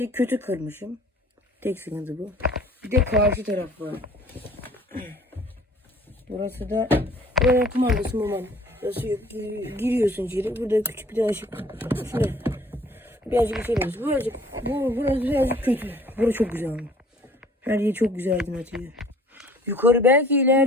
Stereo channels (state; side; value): normal; both; correlation 0.53